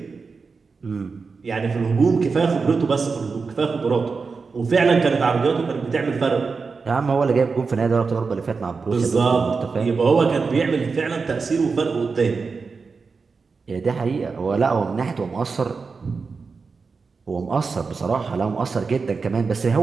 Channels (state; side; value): quieter; left; 4.8 dB